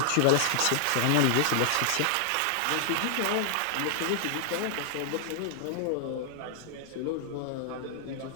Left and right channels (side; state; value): both; different; correlation -0.01